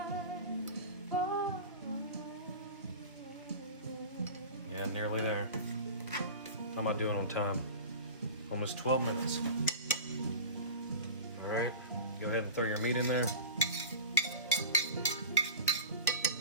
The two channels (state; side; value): inverted; both; correlation -0.33